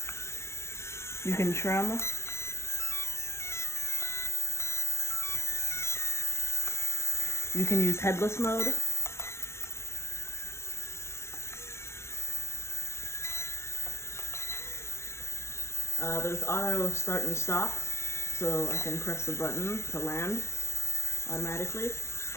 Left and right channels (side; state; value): right; late; 0.13 ms